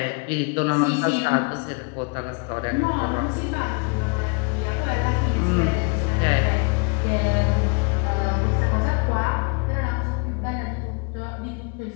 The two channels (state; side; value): quieter; right; 32.6 dB